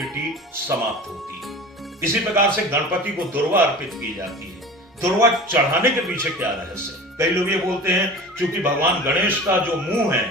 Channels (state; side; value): normal; both; correlation 0.37